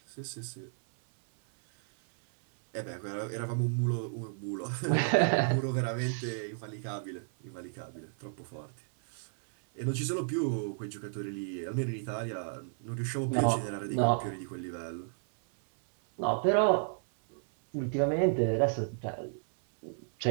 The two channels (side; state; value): left; silent; 56 dB below the other